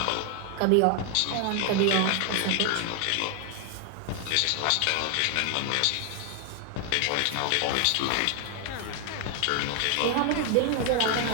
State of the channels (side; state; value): both; different; correlation 0.00